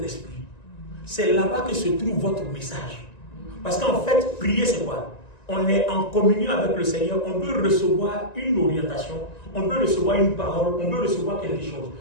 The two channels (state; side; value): late; right; 1.9 ms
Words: esprit. C'est là-bas que se trouve votre message. Parce qu'en fait, prier, c'est quoi? On est en communion avec le Seigneur, on peut recevoir une orientation, on peut recevoir une parole, on peut recevoir quelque chose.